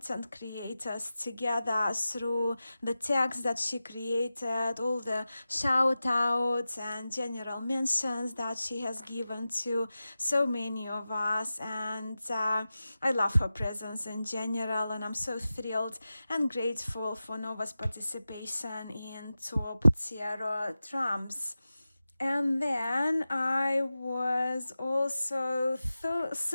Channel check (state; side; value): inverted; both; correlation -0.94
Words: creators together through the tags that she created, all the shout outs and general mentions that she has given to so many of us. And I love her presence in general, and I'm so thrilled and grateful for Nova's participation in top tarot trumps. And then I was also